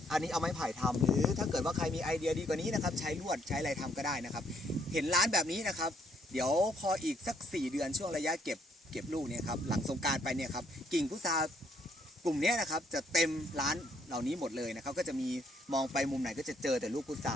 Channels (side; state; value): both; normal; correlation 0.69